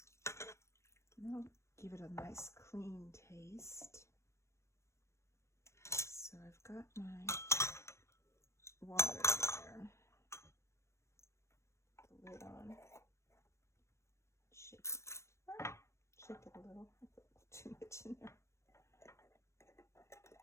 And that'll give it a nice clean taste. So I've got my water there. Put the lid on. Shake it. Shake it a little. I put too much in there.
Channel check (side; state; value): right; late; 0.13 ms